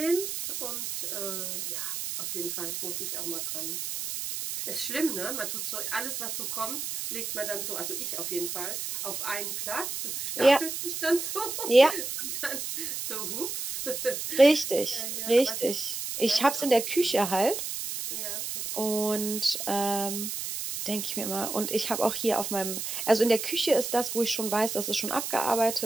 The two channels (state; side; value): noise; right; hiss, 4 dB below the sound